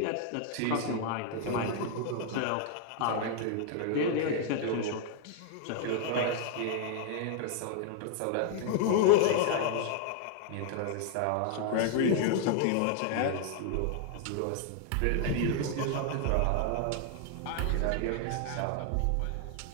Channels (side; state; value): both; different; correlation 0.00